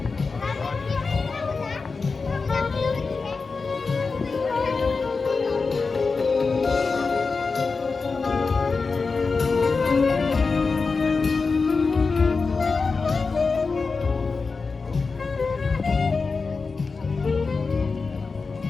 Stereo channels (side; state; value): right; quieter; 4.4 dB